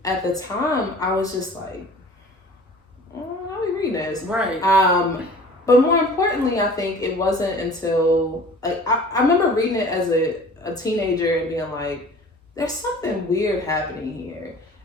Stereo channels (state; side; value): normal; both; correlation 0.45